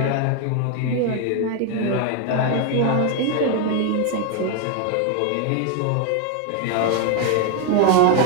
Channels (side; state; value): both; different; correlation 0.01